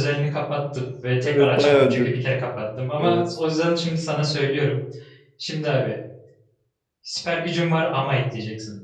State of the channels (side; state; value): both; identical; correlation 1.00